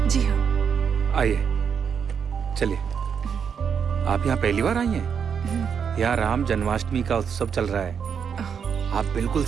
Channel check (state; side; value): quieter; left; 7.1 dB